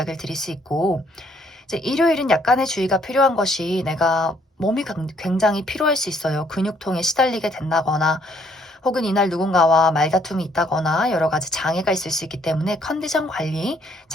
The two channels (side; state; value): both; normal; correlation 0.66